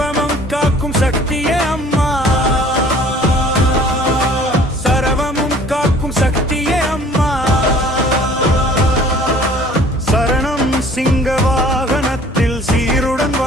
காக்கும் சக்தியே அம்மா, சர்வமும் காக்கும் சக்தியே அம்மா, சரணம் சிங்க வாகனத்தில் சீருடன்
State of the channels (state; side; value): normal; both; correlation 0.52